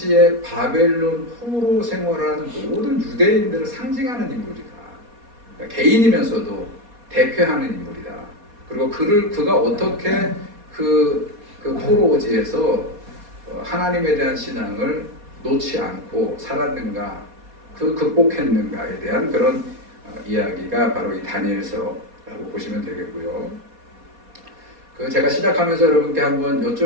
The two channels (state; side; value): late; left; 4.2 ms